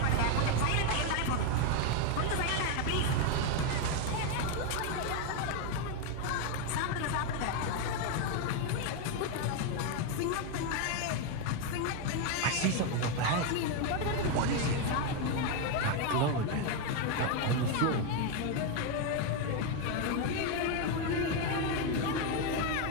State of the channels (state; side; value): different; both; correlation 0.02